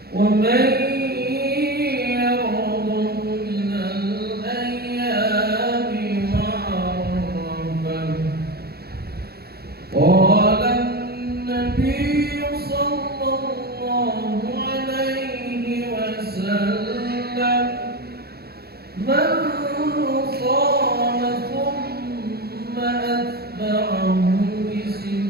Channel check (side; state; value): left; late; 0.46 ms